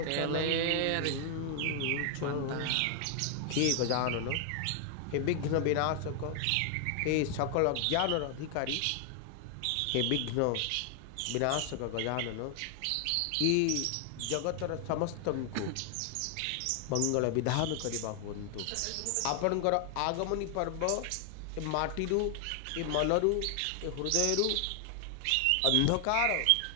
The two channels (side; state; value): both; different; correlation 0.00